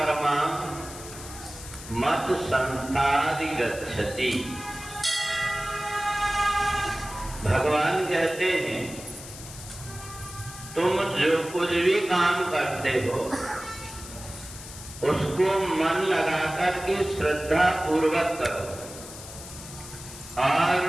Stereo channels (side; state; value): left; noise; hiss, 14 dB below the sound